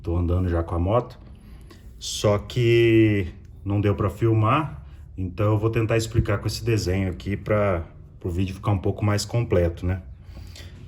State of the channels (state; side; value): identical; both; correlation 1.00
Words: tô andando já com a moto. Só que não deu para filmar, então eu vou tentar explicar com esse desenho aqui para o vídeo ficar um pouco mais completo, né?